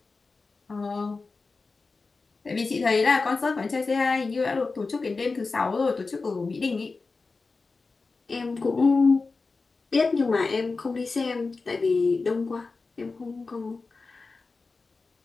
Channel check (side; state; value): right; quieter; 4.0 dB